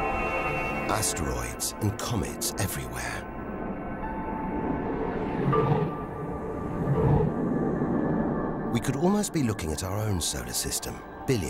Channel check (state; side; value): identical; both; correlation 1.00